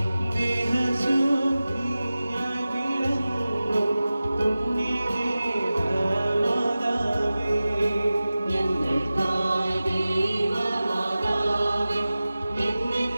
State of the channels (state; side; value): inverted; both; correlation -0.96